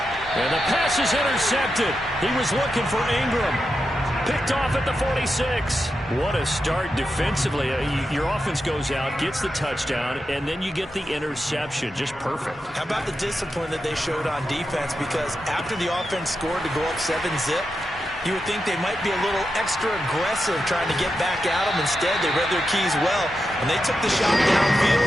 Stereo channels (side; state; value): both; normal; correlation 0.88